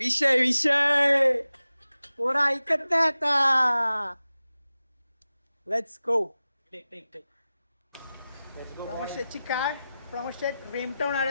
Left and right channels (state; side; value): inverted; both; correlation -0.95